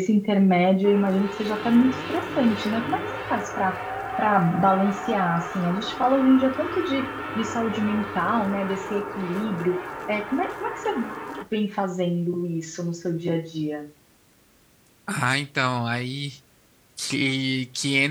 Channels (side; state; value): both; identical; correlation 1.00